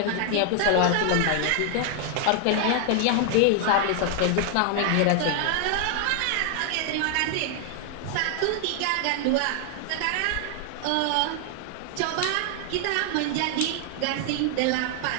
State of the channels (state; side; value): different; both; correlation 0.00